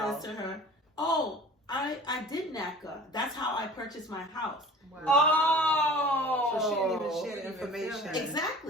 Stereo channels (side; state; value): both; normal; correlation 0.43